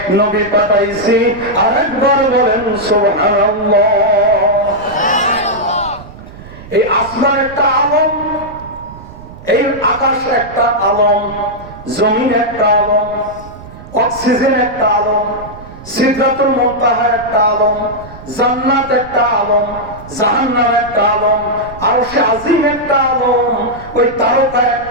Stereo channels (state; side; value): noise; right; rumble, 17 dB below the sound